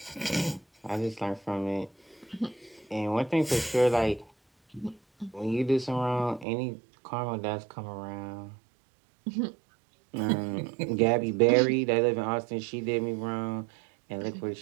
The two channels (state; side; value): drops out; left; at 6.5 s